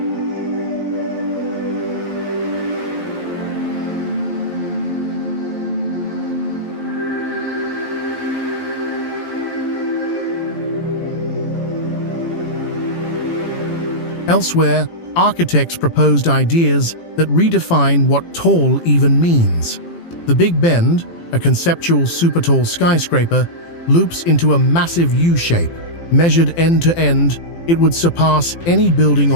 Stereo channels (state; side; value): late; right; 18 ms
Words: Elsewhere, architects proposed ideas that redefine what tall even means. The Big Bend, a conceptual super-tall skyscraper, loops into a massive U-shape. Measured end to end, it would surpass any building